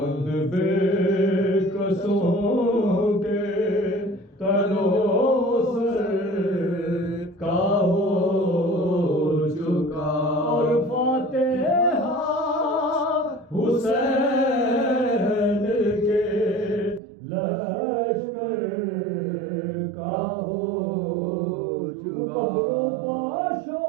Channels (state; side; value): drops out; left; at 17.0 s